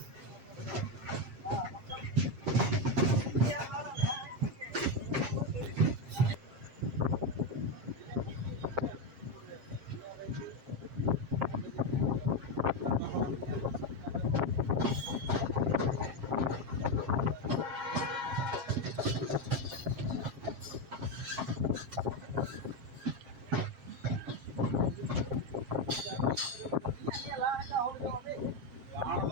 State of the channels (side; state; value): left; late; 7.5 ms